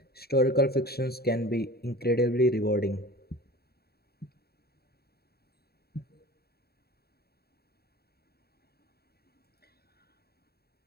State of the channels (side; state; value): right; late; 0.46 ms